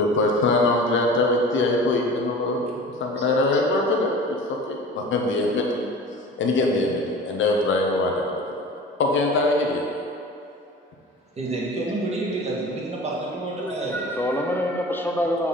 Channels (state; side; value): normal; both; correlation 0.39